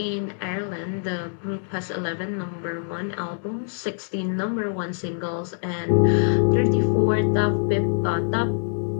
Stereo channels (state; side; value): silent; right; digital silence